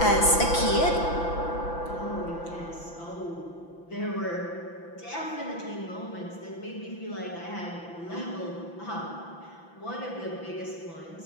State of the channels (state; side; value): late; right; 5.9 ms